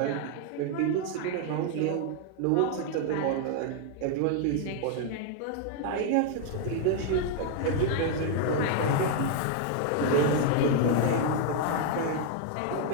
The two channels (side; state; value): both; different; correlation 0.00